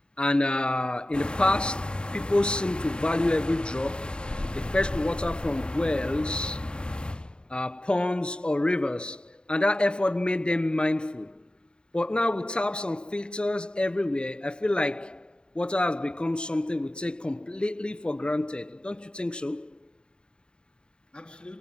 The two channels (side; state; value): right; late; 0.050 ms